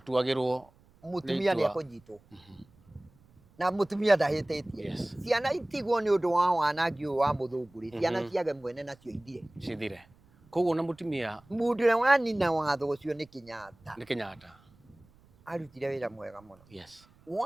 mũtumia nĩ ekũnyitwo na mũtumia ndahĩtĩtie ciana itigwo nĩ ũndũ wa wanangi ũyũ wa mũthũngũ ciana ciage mwene nacio cithire koguo na mũtumia mũndũ ũrĩa wanina watho ũcio nĩ Kenyatta arutire wĩra mwega mũno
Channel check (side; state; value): right; noise; rumble, 29 dB below the sound